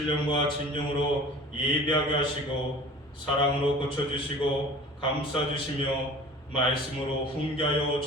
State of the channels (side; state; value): both; normal; correlation 0.42